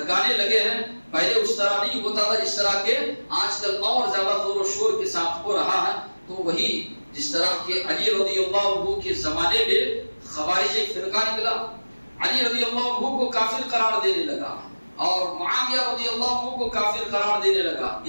لگے ہیں۔ پہلے اس طرح نہیں ہوتا تھا جس طرح کے آج کل اور زیادہ زور و شور کے ساتھ ہو رہا ہے۔ تو وہی جس طرح کے علی رضی اللہ عنہ کے زمانے میں خوارج ایک فرقہ نکلا، علی رضی اللہ عنہ کو کافر قرار دینے لگا اور معاویہ رضی اللہ عنہ کو کافر قرار دینے لگا۔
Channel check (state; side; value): inverted; both; correlation -1.00